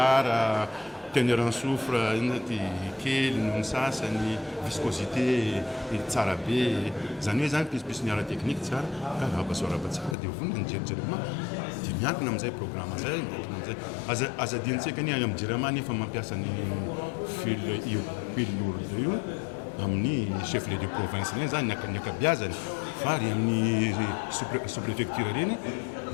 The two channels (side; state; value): right; drops out; at 10.2 s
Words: teneur en soufre ty kely noho ny sasany, viscosité tsara be, zany hoe zany pispisy ny ara teknika tsara ka arahabasoaraba tsara dia vonona ny Jirama dia miankina amin'izay programme zay, miankina amin'izay. Azadintsika ny any amin'ny Jirama nefa mampiasa ny fil lourde io amin'ny chef de province reny zany ny akabeazany fa ary amin'ny sous-préfecture reny